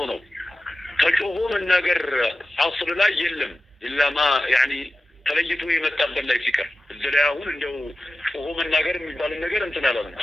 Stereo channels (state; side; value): normal; both; correlation 0.94